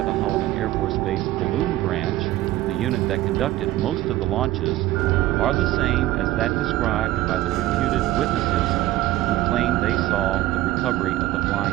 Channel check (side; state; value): left; quieter; 15.6 dB